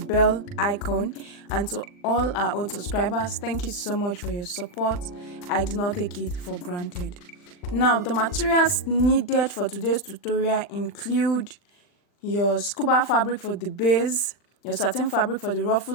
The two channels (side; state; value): right; late; 39 ms